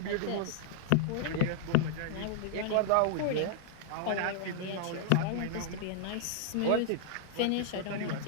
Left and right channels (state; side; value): different; both; correlation -0.01